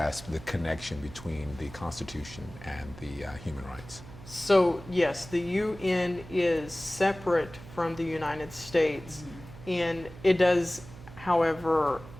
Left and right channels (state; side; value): noise; right; hum, 16 dB below the sound